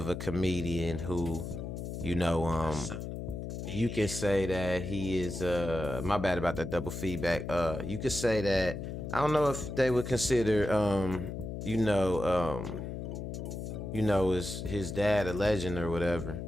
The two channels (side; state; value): left; noise; hum, 6 dB below the sound